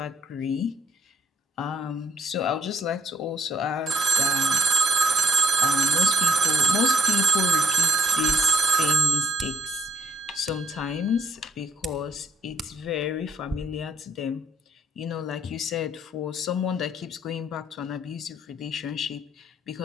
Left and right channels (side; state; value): both; normal; correlation 0.62